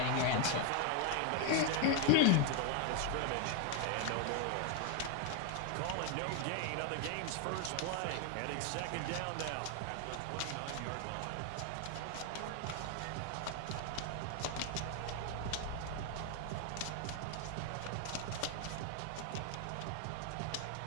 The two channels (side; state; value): both; different; correlation 0.00